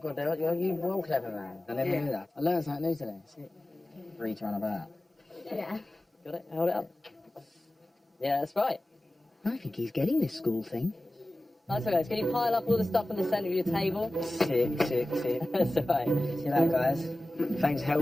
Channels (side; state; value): both; normal; correlation 0.96